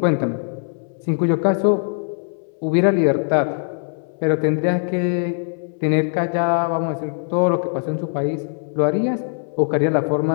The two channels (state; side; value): silent; right; 65 dB below the other